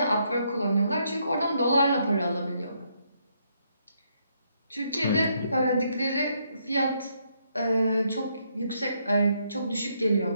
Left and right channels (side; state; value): both; inverted; correlation -0.74